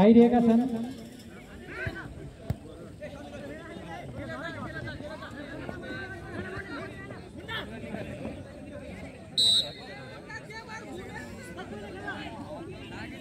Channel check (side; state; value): both; identical; correlation 1.00